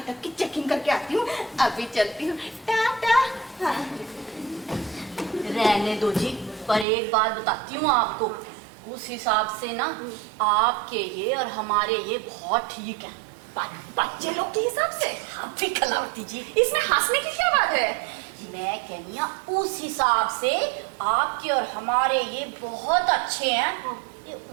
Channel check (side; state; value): left; drops out; at 6.9 s